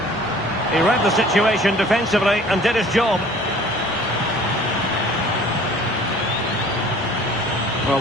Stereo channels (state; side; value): normal; both; correlation 0.50